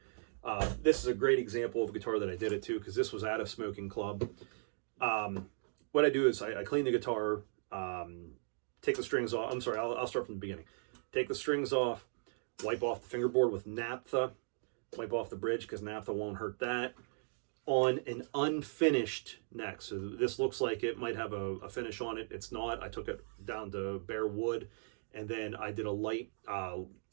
This is a great example of a guitar that I did it to, because this was at a smoking club. What I do is I clean the guitar, take the strings off. I'm sorry, I'll start from the beginning. Take the strings off, wipe off the fingerboard with naphtha, wipe off the bridge because naphtha won't hurt that, on an unfinished neck. So this looks like it might have a finish on it. It's not. I took it down to bare wood, and then I did a light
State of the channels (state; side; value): silent; left; digital silence